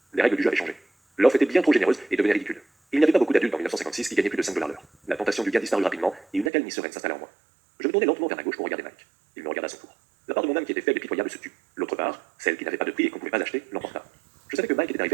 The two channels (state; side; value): drops out; left; at 6.5 s